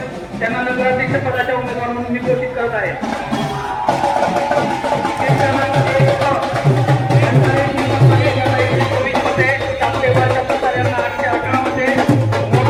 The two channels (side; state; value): both; identical; correlation 1.00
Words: त्यांना नगराध्यक्ष पदाच्या उमेदवार म्हणून मी घोषित करत आहे.